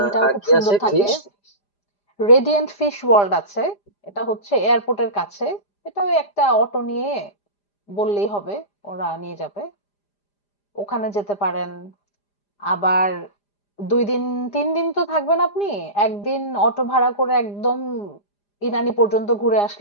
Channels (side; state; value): right; late; 4.9 ms